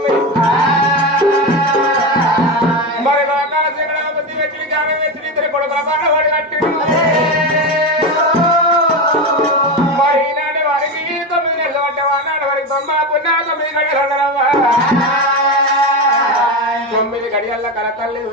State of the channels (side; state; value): both; normal; correlation 0.18